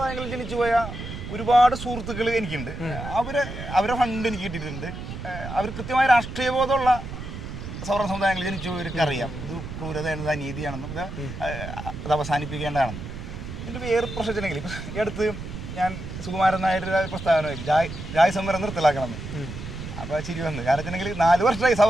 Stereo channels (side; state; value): right; noise; rumble, 9 dB below the sound